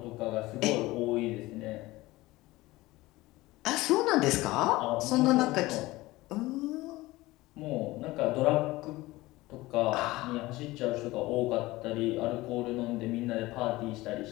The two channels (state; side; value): quieter; right; 19.2 dB